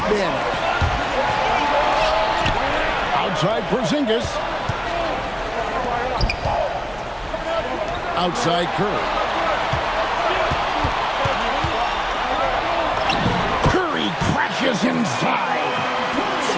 Outside Porzingis. Outside Curry. Curry crashes inside.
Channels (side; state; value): both; identical; correlation 1.00